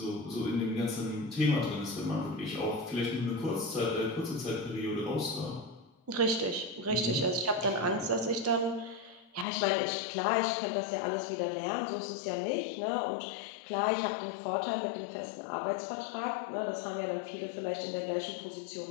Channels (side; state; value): right; drops out; at 9.5 s